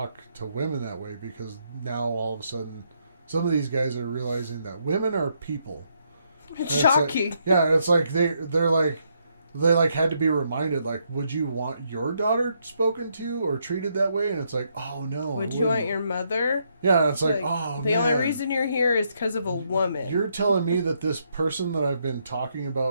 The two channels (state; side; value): inverted; both; correlation -0.76